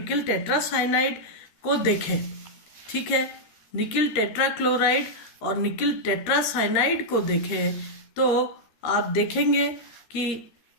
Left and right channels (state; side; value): late; right; 13 ms